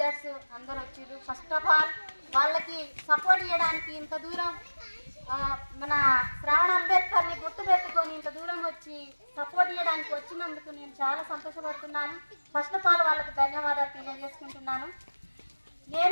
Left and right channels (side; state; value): both; inverted; correlation -1.00